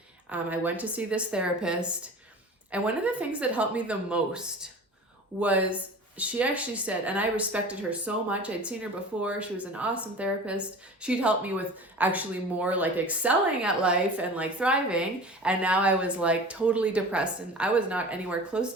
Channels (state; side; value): normal; both; correlation 0.38